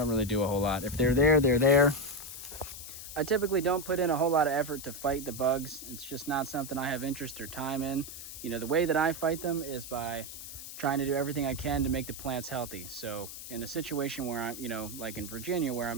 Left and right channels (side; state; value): left; noise; hiss, 11 dB below the sound